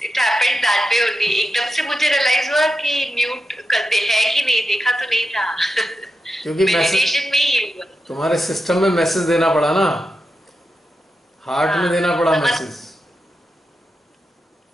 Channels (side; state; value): both; normal; correlation 0.89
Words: It happened that way only। एकदम से मुझे रियलाइज हुआ कि म्यूट करते है कि नहीं, देखा तो नहीं था। क्योंकि मेडिटेशन में ही हुआ। तुम्हारे सिस्टम में मैसेज देना पड़ा ना, हार्ट में देना पड़ा मैसेज।